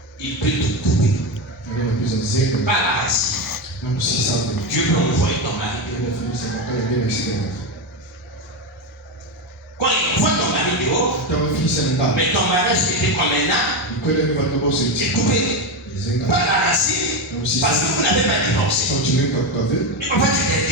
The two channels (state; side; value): normal; both; correlation 0.13